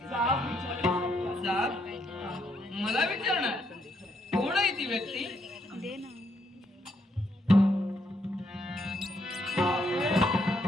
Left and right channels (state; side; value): normal; both; correlation 0.75